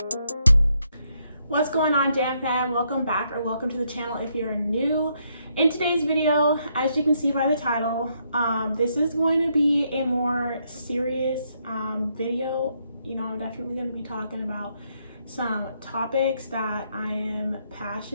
What's going on, JAMFAM? Welcome back, or welcome to the channel if you're new. In today's video, as you can see by the title, this is going to be a more serious video. You know, I'm definitely going to be talking about some topics that I am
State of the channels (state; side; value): inverted; both; correlation -0.75